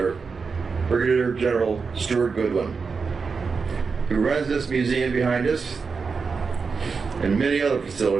Brigadier General Stuart Goodwin, who runs this museum behind us and many other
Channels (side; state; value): left; quieter; 5.1 dB